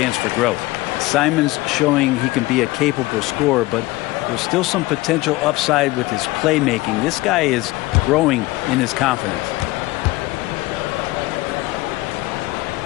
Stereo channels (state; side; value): quieter; right; 20.0 dB